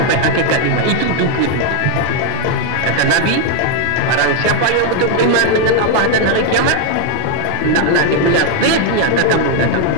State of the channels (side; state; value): both; different; correlation 0.00